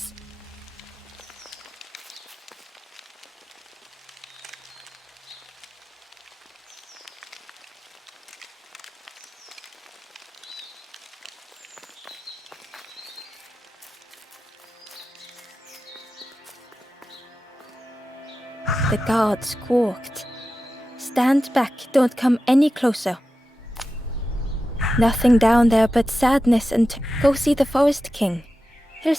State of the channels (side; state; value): both; normal; correlation 0.92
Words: The guard squawked. Stand back, don't come any closer. Nothing down there but sadness and go see the Forest King. He'll